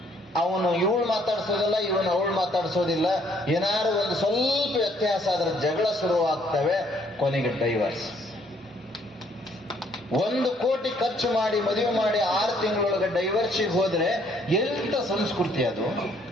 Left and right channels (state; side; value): normal; both; correlation 0.65